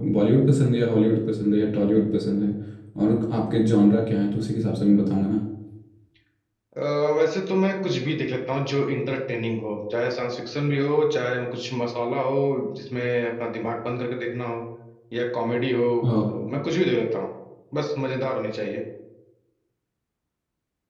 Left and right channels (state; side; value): identical; both; correlation 1.00